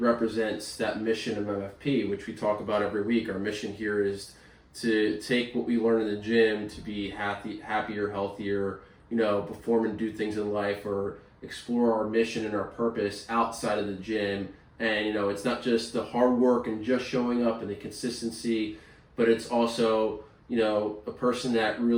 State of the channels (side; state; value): both; identical; correlation 1.00